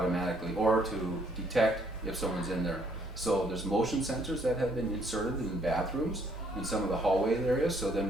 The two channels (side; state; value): both; normal; correlation 0.67